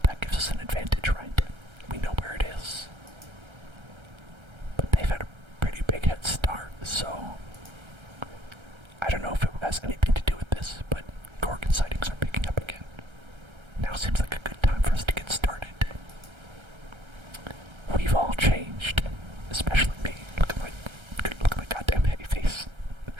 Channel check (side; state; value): left; late; 1.3 ms